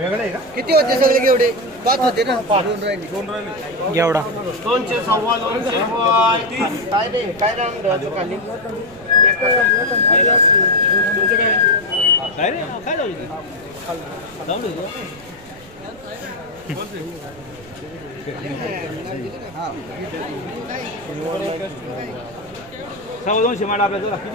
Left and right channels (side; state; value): right; noise; rumble, 23 dB below the sound